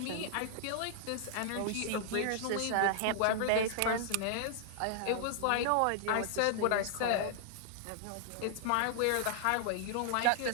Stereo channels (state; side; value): different; both; correlation -0.01